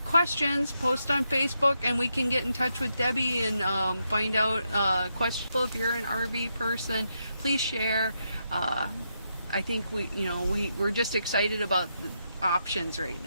questions, post on Facebook, and we can get in touch with Debbie and find out questions. If you're an RV person, please share. I think we're just excited about the options right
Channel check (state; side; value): inverted; both; correlation -0.82